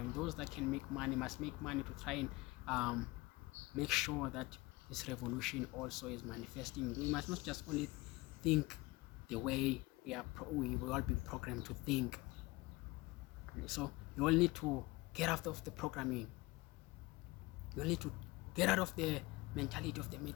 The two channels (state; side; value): quieter; right; 21.8 dB